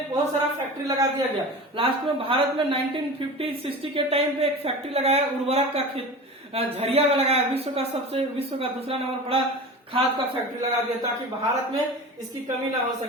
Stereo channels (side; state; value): both; normal; correlation 0.33